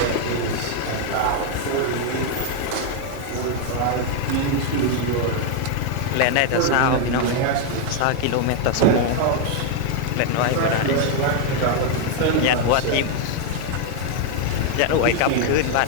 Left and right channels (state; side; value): different; both; correlation 0.00